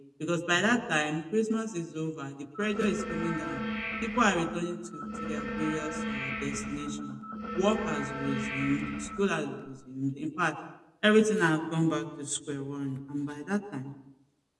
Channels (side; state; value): both; identical; correlation 1.00